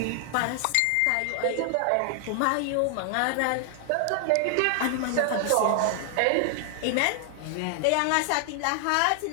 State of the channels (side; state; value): both; different; correlation 0.00